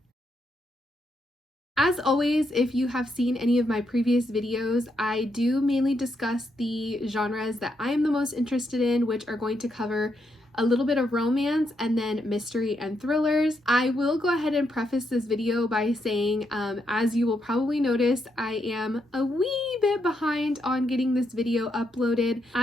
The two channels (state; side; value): normal; both; correlation 0.79